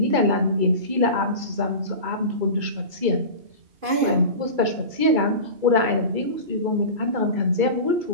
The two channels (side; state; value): left; late; 2.3 ms